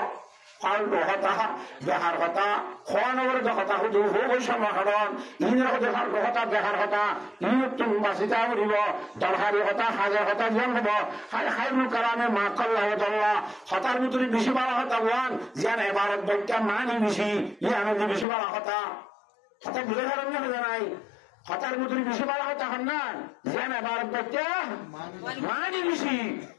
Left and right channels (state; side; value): drops out; right; at 18.2 s